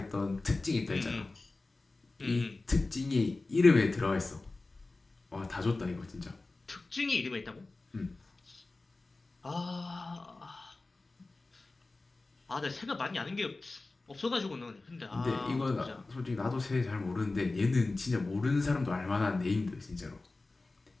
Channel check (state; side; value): quieter; right; 3.3 dB